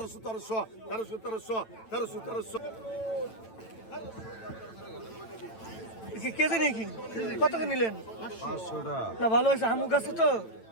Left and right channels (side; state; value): right; late; 9.0 ms